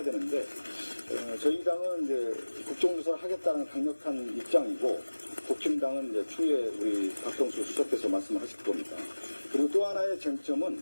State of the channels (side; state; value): both; inverted; correlation -1.00